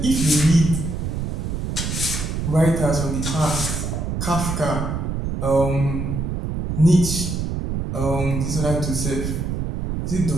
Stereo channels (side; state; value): right; noise; rumble, 2 dB below the sound